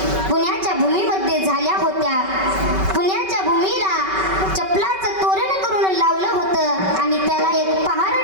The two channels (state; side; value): late; left; 5.2 ms